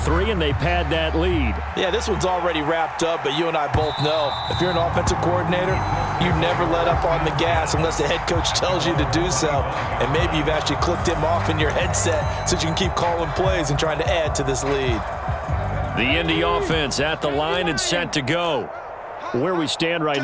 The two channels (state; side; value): identical; both; correlation 1.00